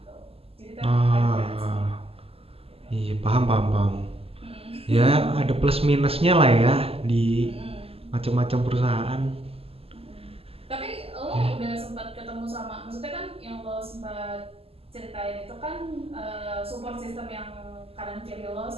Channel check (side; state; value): left; late; 0.28 ms